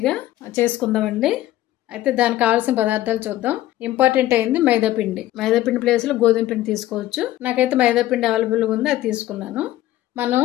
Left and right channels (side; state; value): right; quieter; 14.7 dB